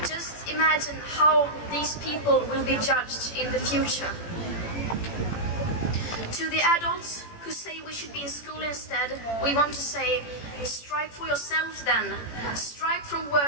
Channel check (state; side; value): late; right; 18 ms